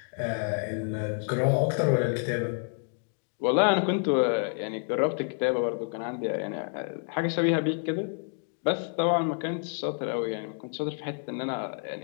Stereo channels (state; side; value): silent; right; 59 dB below the other